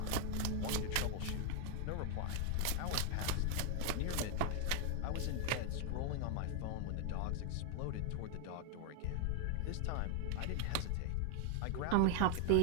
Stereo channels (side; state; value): both; different; correlation 0.00